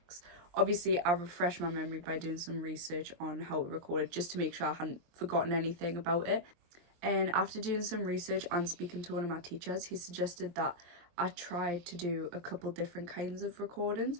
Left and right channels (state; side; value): late; left; 23 ms